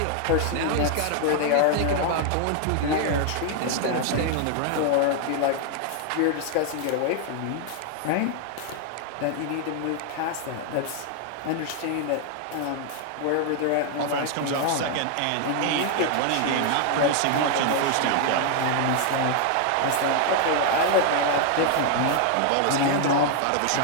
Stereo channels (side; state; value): both; different; correlation 0.00